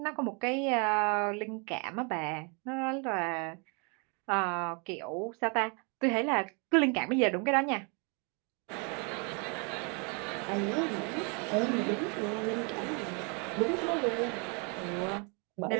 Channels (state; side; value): quieter; left; 34.5 dB